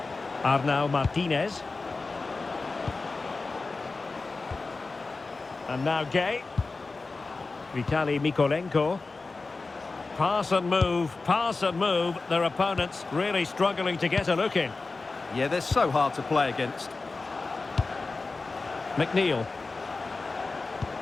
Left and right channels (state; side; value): quieter; right; 3.8 dB